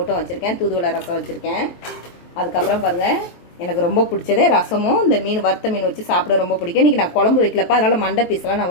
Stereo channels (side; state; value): right; late; 23 ms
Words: வச்சிருக்கேன். தூதுவளை ரசம் வச்சிருக்கேன். அதுக்கப்புறம் பாருங்க, எனக்கு ரொம்ப பிடிச்சதே ரசமும் இந்த மீன், வறுத்த மீன் வச்சு சாப்பிட ரொம்ப பிடிக்கும். இன்னைக்கு நான் குழம்பு வைக்கலப்பா, அதனால மண்டை பீஸ்லாம் நான்